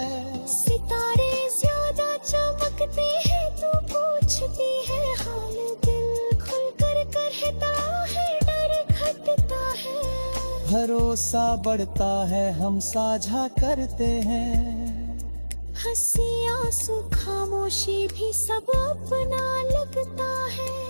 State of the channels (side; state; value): both; inverted; correlation -1.00